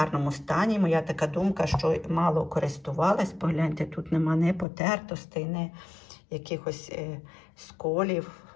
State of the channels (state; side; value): drops out; right; at 4.7 s